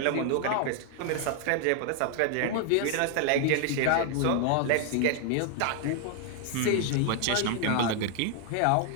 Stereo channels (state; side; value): different; both; correlation 0.00